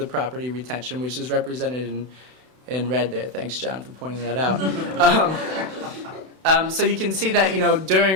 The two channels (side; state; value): left; late; 32 ms